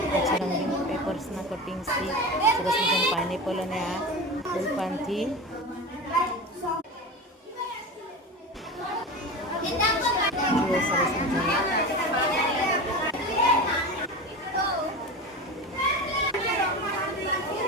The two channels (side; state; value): both; normal; correlation 0.27